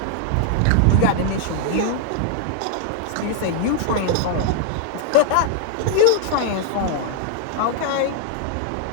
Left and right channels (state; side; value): different; both; correlation 0.00